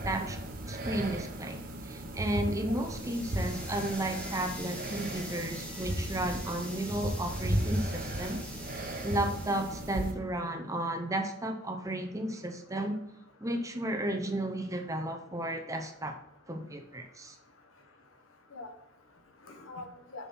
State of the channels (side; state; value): both; normal; correlation 0.62